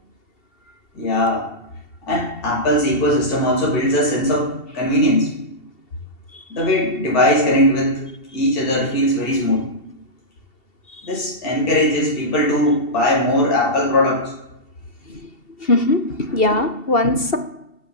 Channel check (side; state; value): right; late; 2.7 ms